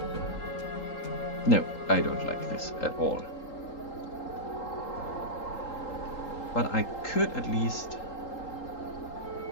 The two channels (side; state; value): right; late; 3.8 ms